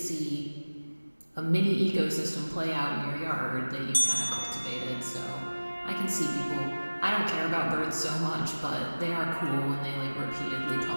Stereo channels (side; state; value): both; inverted; correlation -1.00